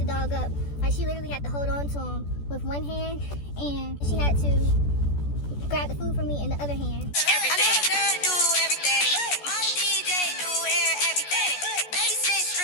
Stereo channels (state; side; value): late; right; 14 ms